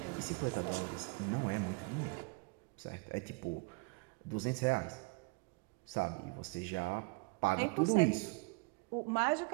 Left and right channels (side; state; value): left; quieter; 29.3 dB